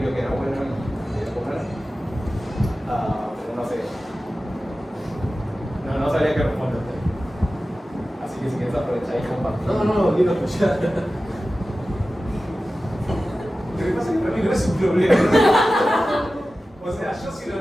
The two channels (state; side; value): normal; both; correlation 0.95